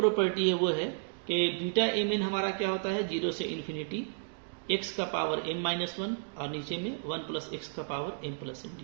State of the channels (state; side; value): silent; left; digital silence